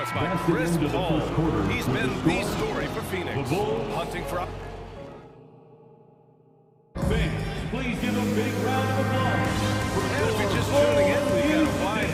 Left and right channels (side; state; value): both; identical; correlation 1.00